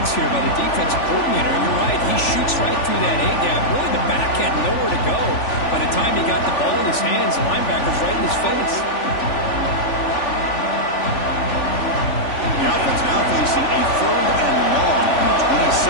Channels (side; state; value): right; late; 3.4 ms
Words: here by the defensive coordinator. You're right, he shoots right through that A-gap. Really, the back had nowhere to go. By the time he got the ball in his hands, the linebacker's right in his face. The offense now facing a 3rd and long from the